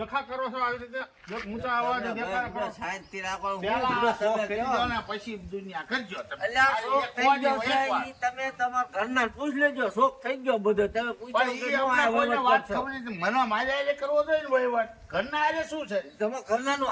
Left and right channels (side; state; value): both; identical; correlation 1.00